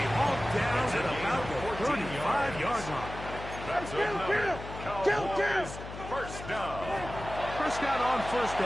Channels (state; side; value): noise; left; hum, 11 dB below the sound